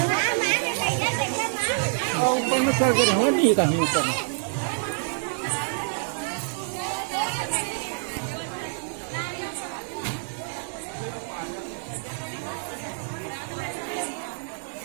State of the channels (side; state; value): left; silent; digital silence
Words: ऊपर में चढ़ के रहो नहीं कहीं ऊपर में